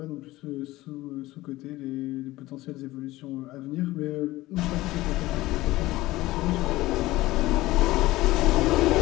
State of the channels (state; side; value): quieter; right; 18.0 dB